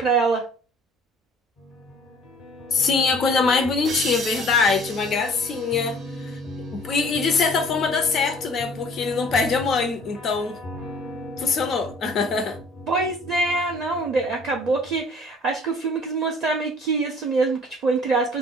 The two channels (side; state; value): both; normal; correlation 0.52